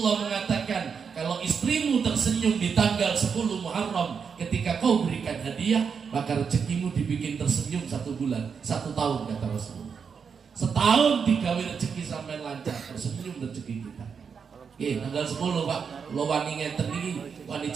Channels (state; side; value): quieter; left; 6.3 dB